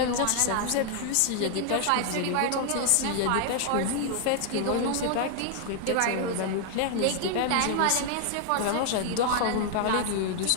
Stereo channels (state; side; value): different; both; correlation 0.00